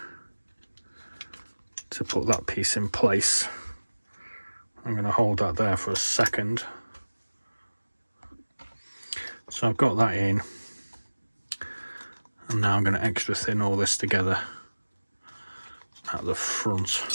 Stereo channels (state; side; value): inverted; both; correlation -1.00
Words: to put that piece in place. I'm going to hold that there for a second. So I've got that in, and now I'm going to extra thin all this together at the